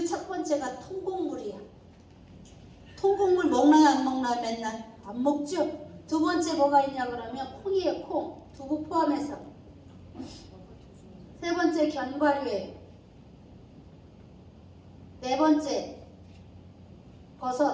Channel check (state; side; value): identical; both; correlation 1.00